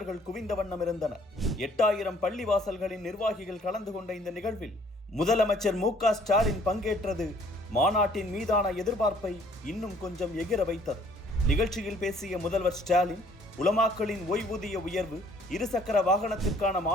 குவிந்த வண்ணம் இருந்தனர். 8000 பள்ளிவாசல்களின் நிர்வாகிகள் கலந்து கொண்ட இந்த நிகழ்வில் முதலமைச்சர் மு.க. ஸ்டாலின் பங்கேற்றது மாநாட்டின் மீதான எதிர்பார்ப்பை இன்னும் கொஞ்சம் எகிர வைத்தது. நிகழ்ச்சியில் பேசிய முதல்வர் ஸ்டாலின், உலமாக்களின் ஓய்வூதிய உயர்வு, இருசக்கர வாகனத்திற்கான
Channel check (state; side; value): normal; both; correlation 0.59